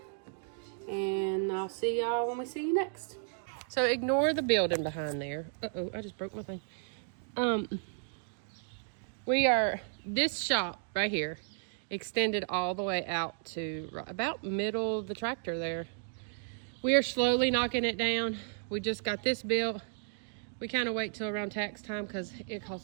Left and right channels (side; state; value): left; silent; digital silence